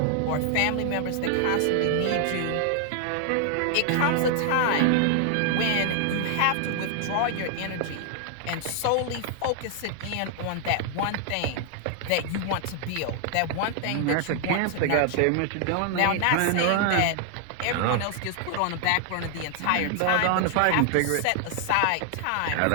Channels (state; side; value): different; both; correlation 0.00